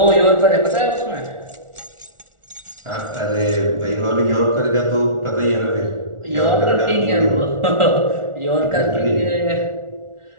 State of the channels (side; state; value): left; late; 1.4 ms